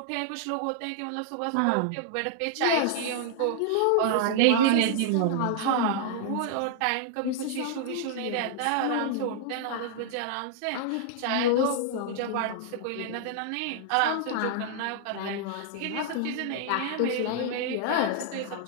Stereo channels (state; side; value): different; both; correlation -0.01